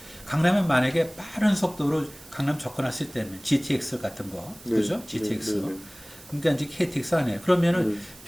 강남에 만약에 빠른 속도로 강남 접근했을 때는 GTX 같은 거, 네. 그죠? GTX. 네. 네. 그러니까 이제 KTX 안에 그러면은 네.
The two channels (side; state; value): right; noise; hiss, 21 dB below the sound